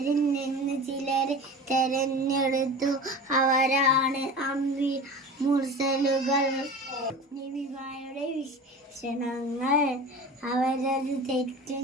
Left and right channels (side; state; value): both; normal; correlation 0.34